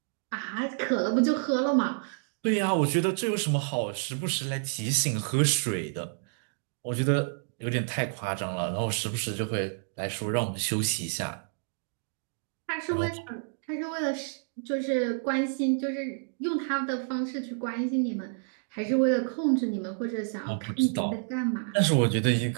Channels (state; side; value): silent; left; digital silence